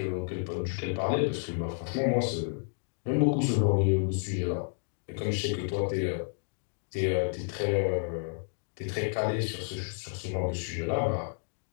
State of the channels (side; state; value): right; silent; digital silence